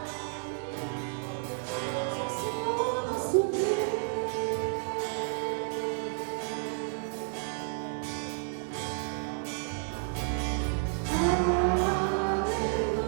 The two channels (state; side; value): silent; left; digital silence